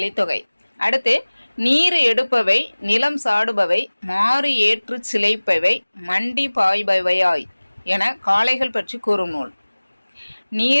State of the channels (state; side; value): inverted; both; correlation -1.00